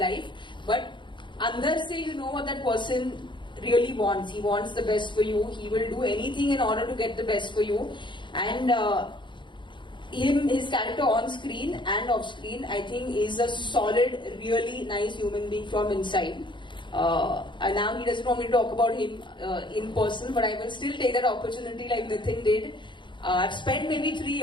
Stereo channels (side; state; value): right; late; 0.23 ms